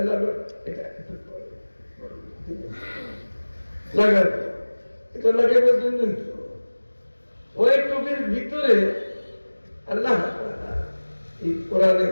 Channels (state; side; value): inverted; both; correlation -1.00